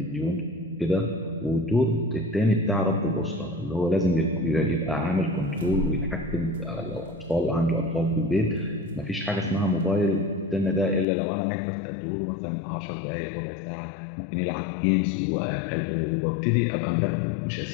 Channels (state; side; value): drops out; right; at 11.1 s